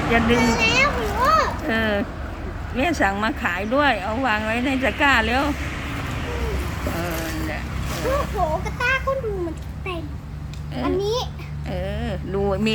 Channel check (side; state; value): both; identical; correlation 1.00